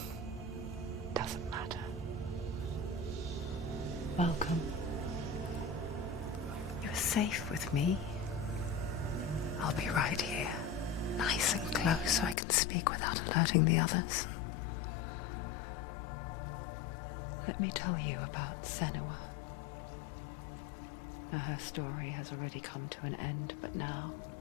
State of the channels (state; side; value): drops out; right; at 12.4 s